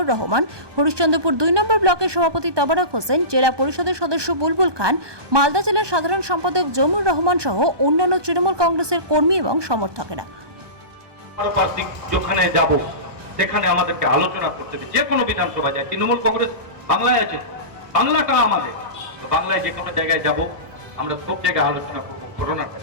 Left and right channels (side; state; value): left; late; 1.2 ms